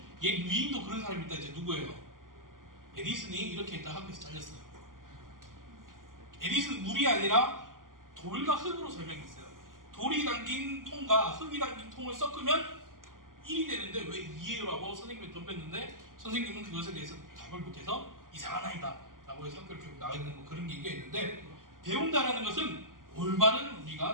얘 위인도 그런 사람이 있다. 이제 누구예요? 에디슨이 이렇게 했다 학교에서 잘렸어요. 에디슨 물이 아니라 돌과 흙으로 설명했어요. 돌이 담긴 통과 흙이 담긴 통을 섞으면 1이 되는데 왜 2예요라고 선생님이 덤볐는데 선생님은 그것에 대해서 답을 못해서 이상한 아이다 라고 해서 학교를 결국 나가야 되는 뭐 그런 얘기가 있는데 배운다라는 것은 올바른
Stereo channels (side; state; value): left; late; 0.90 ms